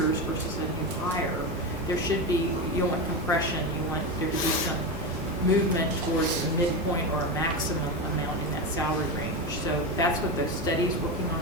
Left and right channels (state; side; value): normal; both; correlation 0.17